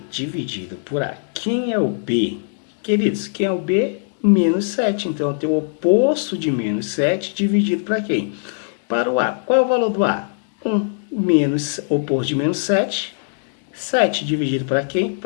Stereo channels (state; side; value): silent; right; digital silence